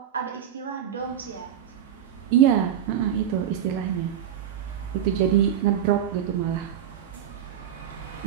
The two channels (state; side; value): quieter; left; 9.8 dB